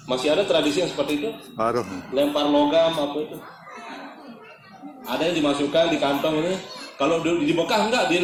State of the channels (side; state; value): both; identical; correlation 1.00